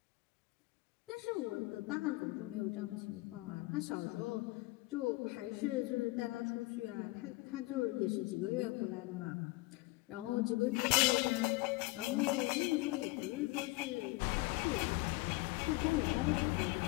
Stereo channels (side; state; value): right; quieter; 22.3 dB